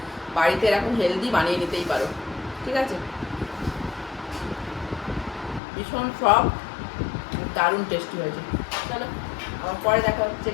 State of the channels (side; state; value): right; drops out; at 5.6 s